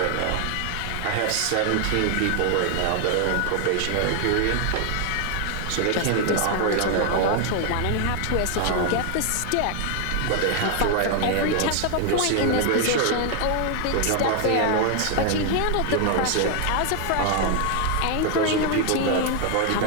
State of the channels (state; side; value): different; both; correlation 0.00